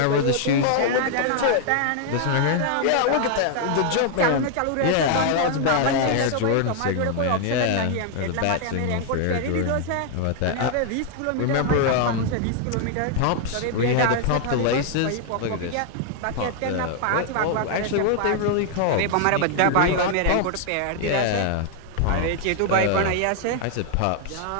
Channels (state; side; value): different; both; correlation 0.00